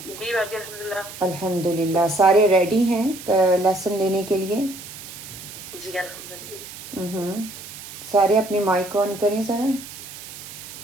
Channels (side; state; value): right; noise; hiss, 13 dB below the sound